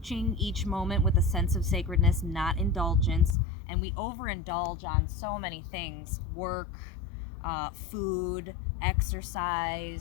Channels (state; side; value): drops out; right; at 3.4 s